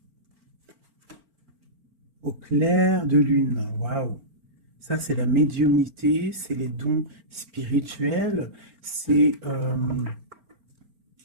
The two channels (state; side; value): late; left; 4.4 ms